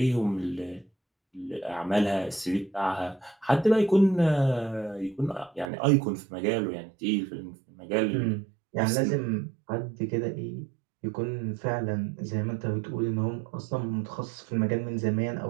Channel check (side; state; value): left; drops out; at 5.7 s